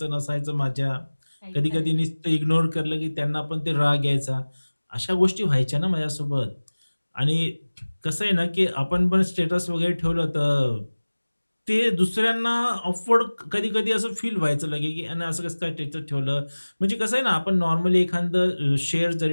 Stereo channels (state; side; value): inverted; both; correlation -1.00